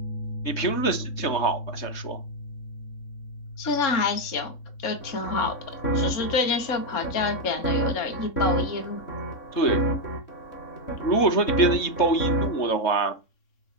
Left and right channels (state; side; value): late; right; 3.6 ms